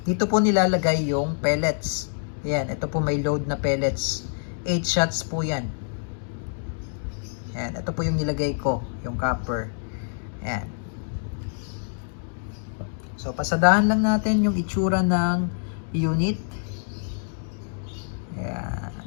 Dito po nilalagay yung pellets. Ayan, ito po may load na pellets. 8 shots po yan. Ayan, ito po yung nilagay ko, yung copper. Ayan. So, pasadahan lang natin yung itsura ng unit. Ayan.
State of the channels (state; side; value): silent; right; digital silence